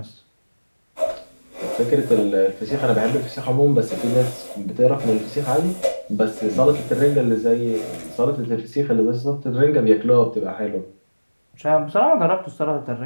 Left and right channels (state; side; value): inverted; both; correlation -1.00